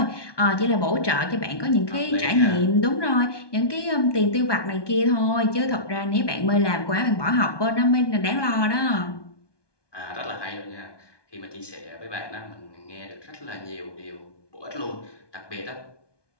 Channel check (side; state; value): right; late; 1.2 ms